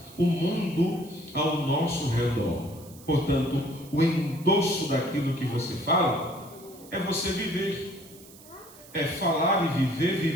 o mundo ao nosso redor. Portanto, o endosso daquilo que você fala é você viver. É falar e viver,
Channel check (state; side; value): noise; right; hiss, 21 dB below the sound